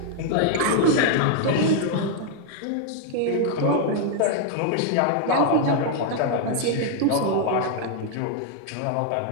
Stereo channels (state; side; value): different; both; correlation 0.00